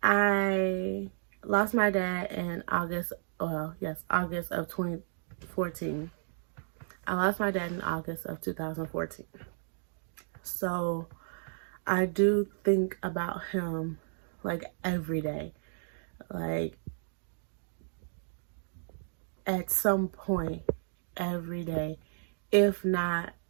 I lost my dad in August of 2014. I lost my dad in August of 2014. So I do think about him like every day. Like at some point every day, if not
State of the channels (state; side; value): silent; left; digital silence